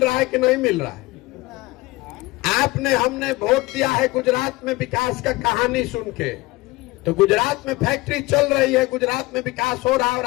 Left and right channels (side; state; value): right; quieter; 20.9 dB